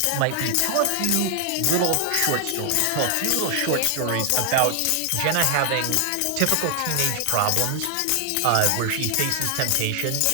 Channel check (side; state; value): both; different; correlation 0.00